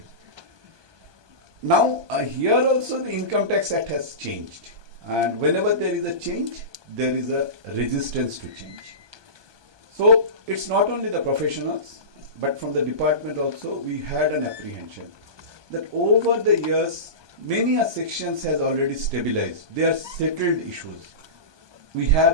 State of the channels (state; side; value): late; left; 1.2 ms